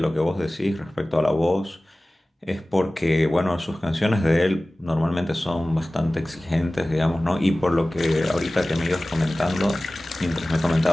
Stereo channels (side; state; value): both; normal; correlation 0.98